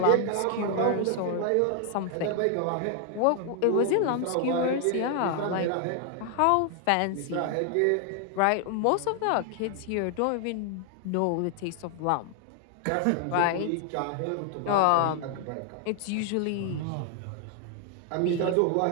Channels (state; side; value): different; both; correlation 0.00